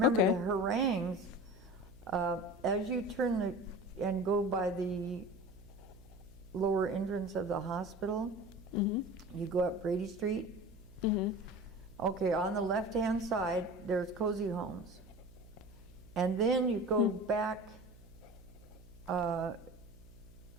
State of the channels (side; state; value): right; noise; hum, 23 dB below the sound